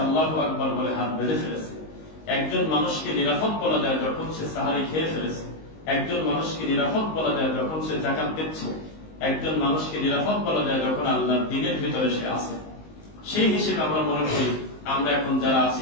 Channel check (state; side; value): late; right; 19 ms